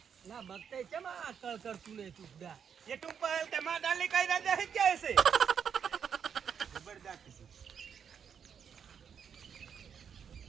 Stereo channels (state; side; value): quieter; left; 7.5 dB